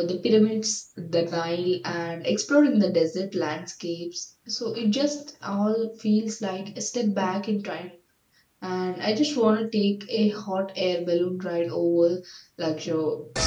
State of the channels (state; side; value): identical; both; correlation 1.00